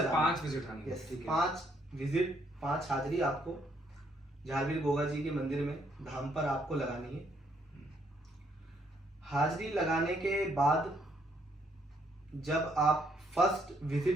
है। 5 विजिट, 5 विजिट 5 हाजरी आपको झारवीर गोगा जी के मंदिर में धाम पर आपको लगानी है। हाजरी लगाने के बाद जब आप फर्स्ट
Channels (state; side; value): normal; both; correlation 0.70